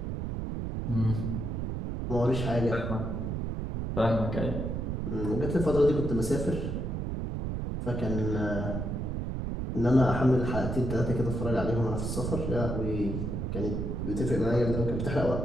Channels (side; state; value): right; noise; rumble, 2 dB below the sound